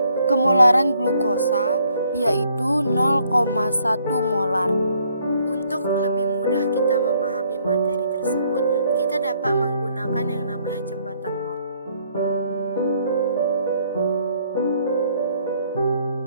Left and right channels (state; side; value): inverted; both; correlation -0.67